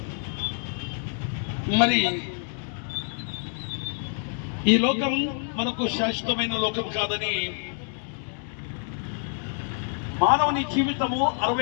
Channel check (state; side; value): silent; right; 57 dB below the other